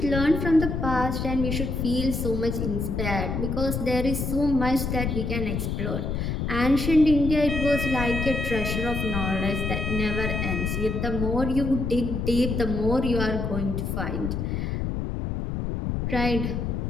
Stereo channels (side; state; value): left; noise; rumble, 2 dB below the sound